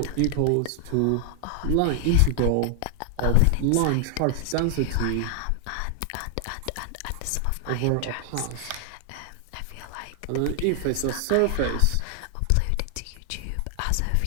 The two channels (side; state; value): both; different; correlation 0.00